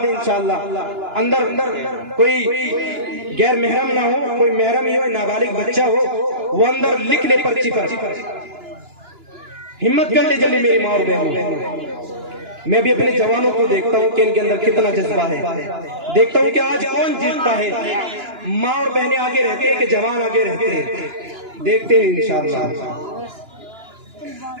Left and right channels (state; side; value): late; left; 2.9 ms